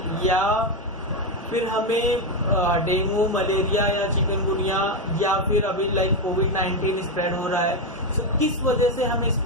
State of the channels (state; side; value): normal; both; correlation 0.08